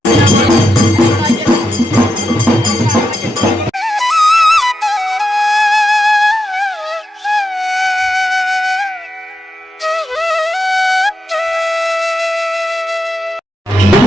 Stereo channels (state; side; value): normal; both; correlation 0.86